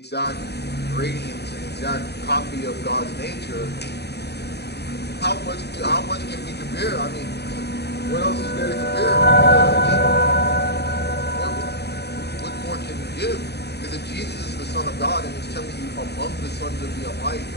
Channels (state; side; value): late; right; 0.48 ms